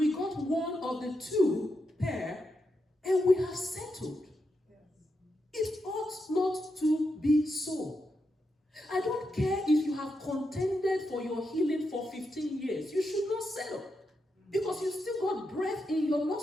got one of the two pair and we have settled. It ought not to be so. I don't care if you have contended for your healing for 15 years. You should not settle because you still got breath in your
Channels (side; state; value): both; normal; correlation 0.85